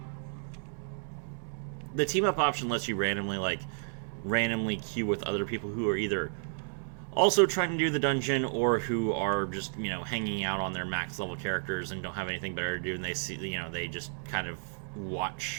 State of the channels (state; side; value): silent; left; digital silence